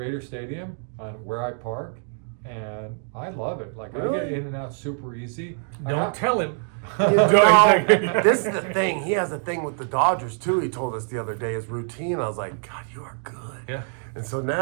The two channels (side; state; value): left; silent; 56 dB below the other